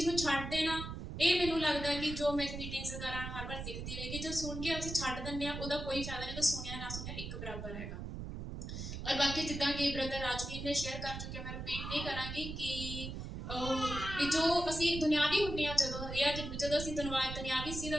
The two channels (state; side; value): noise; right; rumble, 7 dB below the sound